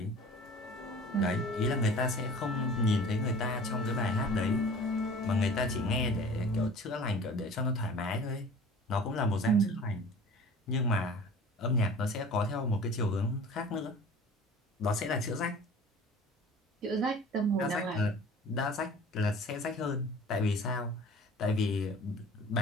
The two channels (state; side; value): normal; both; correlation 0.44